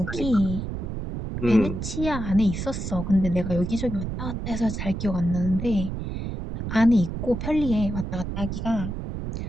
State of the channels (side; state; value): right; noise; rumble, 5 dB below the sound